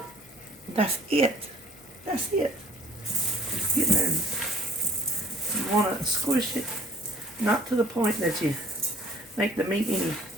That's it. That's it. Get there. You want to squish it, not to the point that you make the meat any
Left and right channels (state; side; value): noise; left; hum, 27 dB below the sound